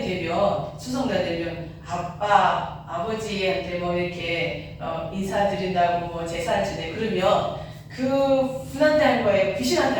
되면 추석날 되면 아버지한테 뭐 이렇게 인사드린다고 뭐 제사를 지내 그러면 그 분한테 하는 거예요? 귀신한테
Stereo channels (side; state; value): both; identical; correlation 1.00